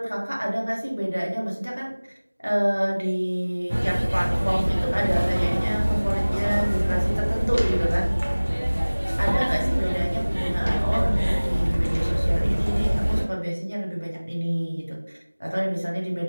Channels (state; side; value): inverted; both; correlation -1.00